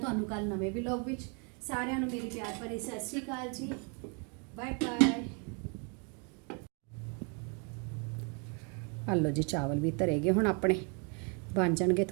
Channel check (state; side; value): quieter; left; 36.5 dB